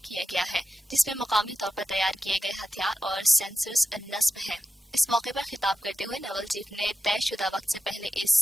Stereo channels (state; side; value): normal; both; correlation 0.91